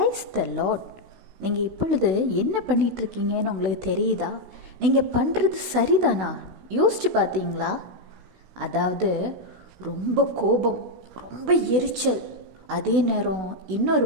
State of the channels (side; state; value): left; late; 16 ms